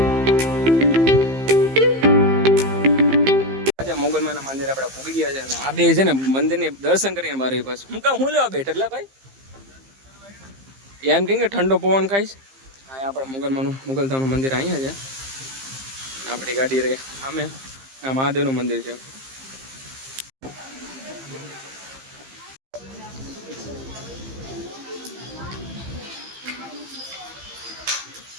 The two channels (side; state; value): left; late; 15 ms